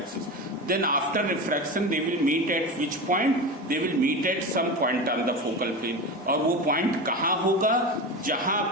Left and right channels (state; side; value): normal; both; correlation 0.24